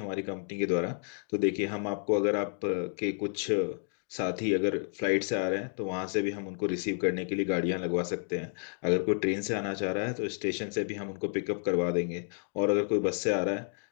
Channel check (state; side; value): silent; right; 57 dB below the other